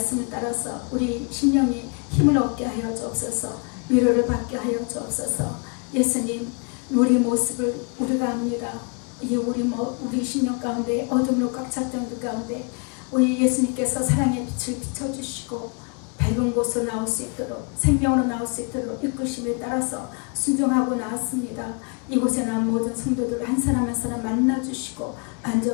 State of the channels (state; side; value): quieter; right; 35.1 dB